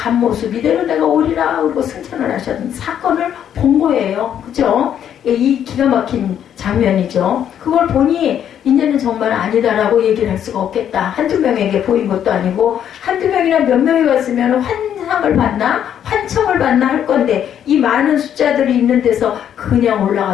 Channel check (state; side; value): quieter; right; 9.6 dB